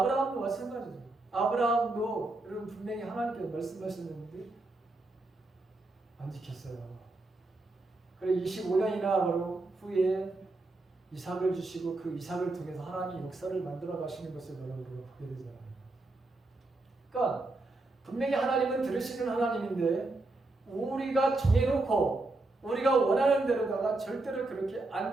마찬가지죠. 아브라함도 여러분 분명히 하나님께서 말씀하셨는데 안 지켰어요. 그래 25년이나 바로 후에 이삭을 주시고 그 이삭을 통해서 하나님이 역사를 만들어 가시는 것을 여러분 보게 되잖아요. 그러니까 분명히 하나님은 들으시는 하나님인데 우리가 정해놓고 우리가 원하는 대로다가 절대로 그렇게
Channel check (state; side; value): quieter; left; 3.0 dB